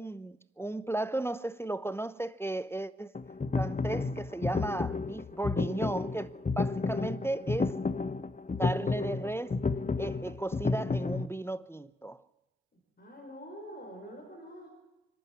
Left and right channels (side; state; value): both; normal; correlation 0.80